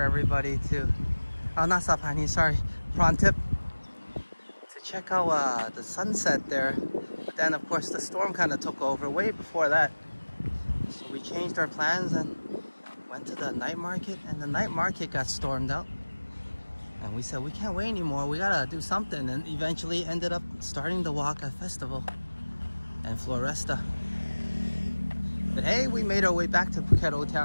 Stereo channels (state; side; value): inverted; both; correlation -1.00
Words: to, oh not Saphan, sorry, Prantip, to check out the sunset there. But then of course the storm kind of took over way before that. So we changed our plans and went to the night market, and the night market got stormed out. And we said, we can't wait anymore, we gotta do something. And eventually ended up starting the walk at Festival and Floresta. But hey, we made our way back to Phuket Old